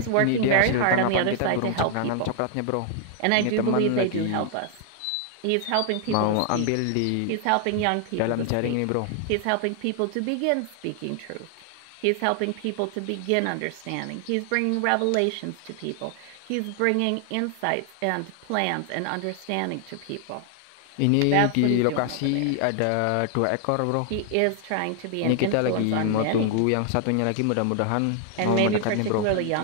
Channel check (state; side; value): different; both; correlation 0.00